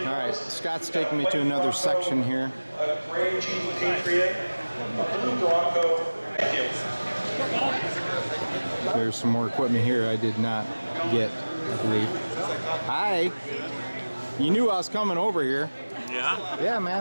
All right. Scott's taking me to another section here. A gray Jeep Patriot, a blue Bronco. Thank you. There's some more equipment here I did not get, I believe. Hi. You knew I was coming over here. Yeah? Yeah,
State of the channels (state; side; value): inverted; both; correlation -1.00